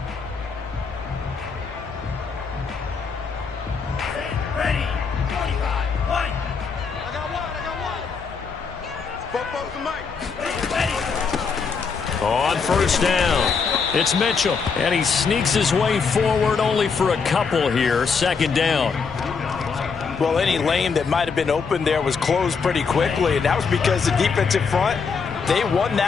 On first down, it's Mitchell, and he sneaks his way forward only for a couple here. Second down. Well, any lane that might have been open there was closed pretty quickly, and that was because the defensive front, they won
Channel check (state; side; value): quieter; right; 5.4 dB